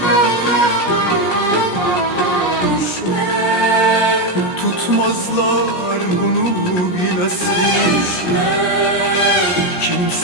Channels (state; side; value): late; right; 17 ms